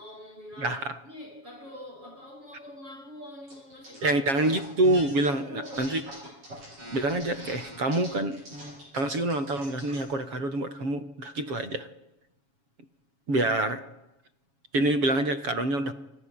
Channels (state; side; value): late; left; 7.2 ms